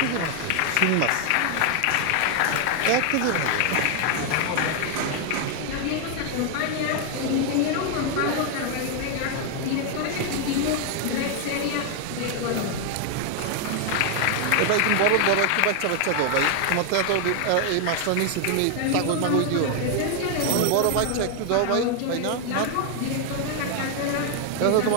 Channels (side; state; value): both; different; correlation 0.00